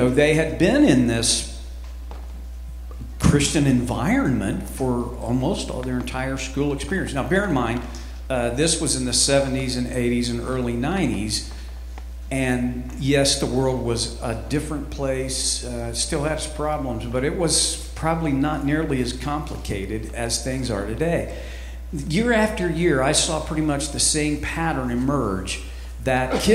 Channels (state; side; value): identical; both; correlation 1.00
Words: they had been in this Christian environment for almost all their entire school experience. Now, bear in mind, this was in the 70s and 80s and early 90s. And yes, the world was a different place, still had its problems, but it was probably not nearly as complicated as things are today. Year after year, I saw pretty much the same pattern emerge, that